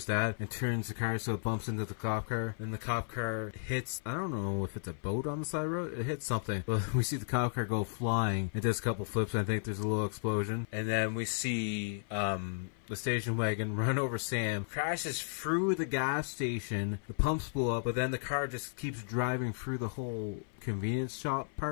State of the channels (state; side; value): silent; right; 55 dB below the other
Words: dad, and turns the car so it bumps into the cop car. Then the cop car hits, I don't know if it's a boat on the side of the road, it hits something. But we see the cop car go flying and does a couple flips, and I think there's a little explosion. And then we see the station wagon run over Sam, crashes through the gas station, the pumps blow up, but then the car just keeps driving through the whole convenience shop